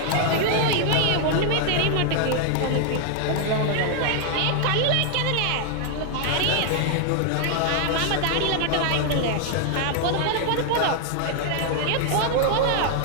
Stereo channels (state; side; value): different; both; correlation 0.00